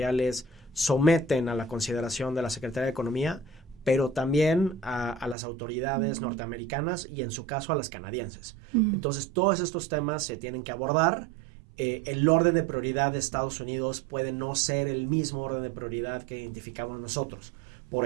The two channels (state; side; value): drops out; left; at 5.4 s